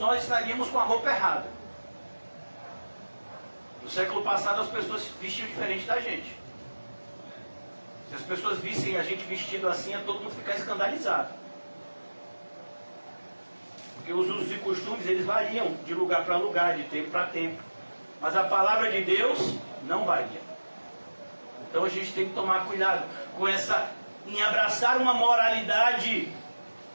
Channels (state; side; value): inverted; both; correlation -1.00